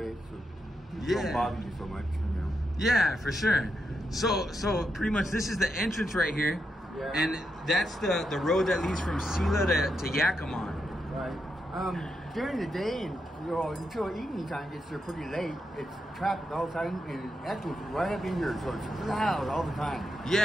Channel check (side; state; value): both; normal; correlation 0.83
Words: so people yeah. don't bother you so much, you know. Yeah, for sure. So pretty much this is the entrance right here. Yeah. And that's the road that leads from Sela to Yakima. Right. During the day and until evening time gets there pretty late, it's traffic all the time, and actually it's right up in here, so it's loud all the time.